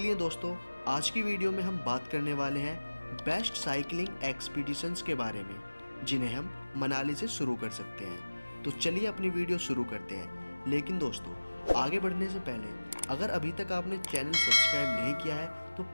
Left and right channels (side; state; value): both; inverted; correlation -1.00